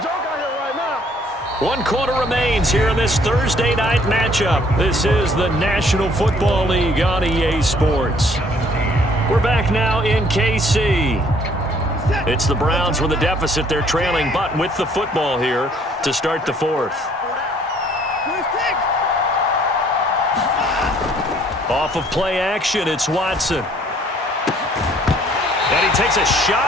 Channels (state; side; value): normal; both; correlation 0.61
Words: joke out here right now. 1 quarter remains here in this Thursday night matchup. This is the National Football League on EA Sports. We're back now in KC. It's the Browns with a deficit. They're trailing, but with the football here to start the 4th. Off of play action, it's Watson. And he takes a